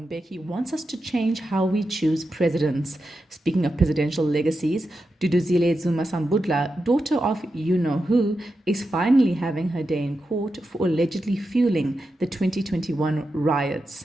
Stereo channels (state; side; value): normal; both; correlation 0.89